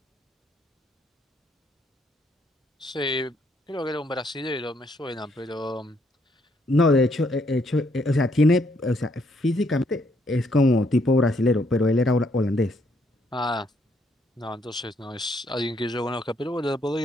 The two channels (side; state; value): both; normal; correlation 0.71